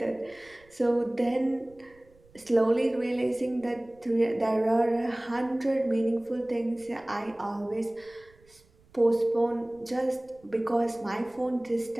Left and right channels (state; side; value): noise; right; rumble, 29 dB below the sound